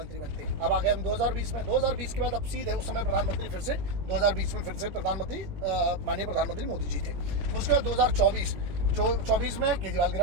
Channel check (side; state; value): left; late; 20 ms